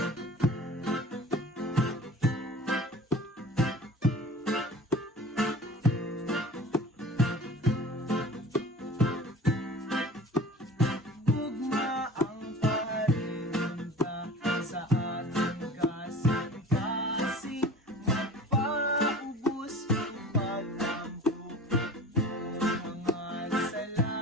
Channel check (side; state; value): both; normal; correlation 0.40